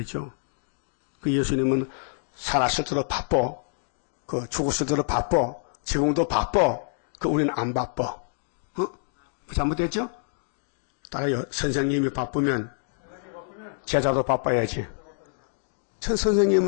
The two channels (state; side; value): silent; right; digital silence